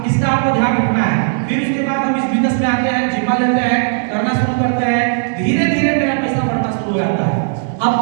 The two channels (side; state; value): left; silent; digital silence